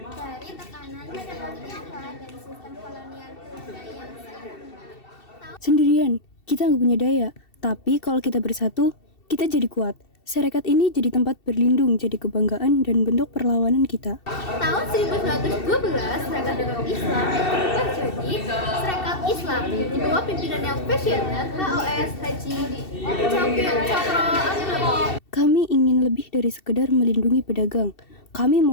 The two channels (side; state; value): right; late; 2.7 ms